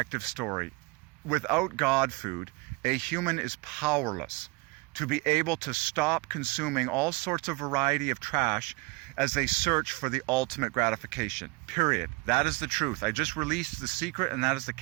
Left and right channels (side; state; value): left; quieter; 25.1 dB